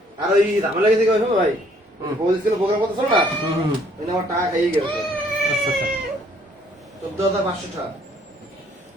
আর ওই ঝামেলা গেছে কি ভাই হুম। বলছিল প্রোগ্রাম কথা শোনো না ওই আমার টাকা খাইয়ে গেছে আচ্ছা আচ্ছা 14,500 টাকা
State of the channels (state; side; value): normal; both; correlation 0.62